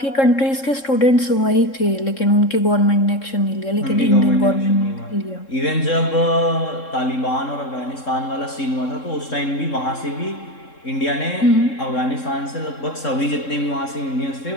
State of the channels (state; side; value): late; right; 3.7 ms